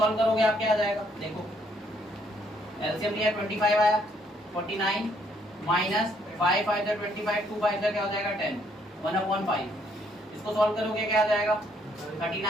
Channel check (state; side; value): normal; both; correlation 0.68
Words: करोगे आप क्या आ जाएगा? देखो एलसीएम लिया 25 आया, 49 माइनस 5 5 का 25, 2 5 का क्या हो जाएगा? 10, 1/5। इसको सॉल्व करोगे क्या आ जाएगा?